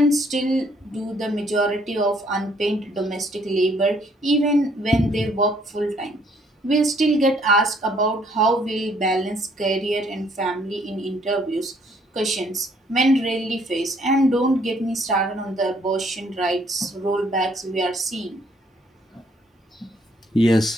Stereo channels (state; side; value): normal; both; correlation 0.65